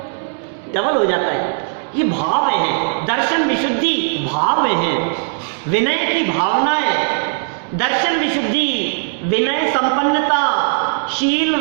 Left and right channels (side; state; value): left; silent; 67 dB below the other